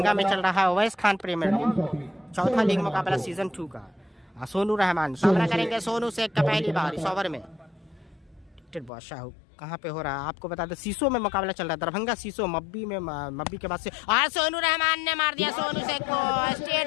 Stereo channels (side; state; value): right; drops out; at 8.9 s